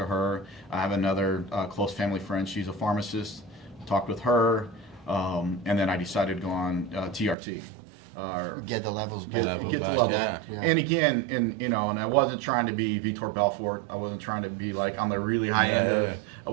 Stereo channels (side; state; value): left; drops out; at 7.4 s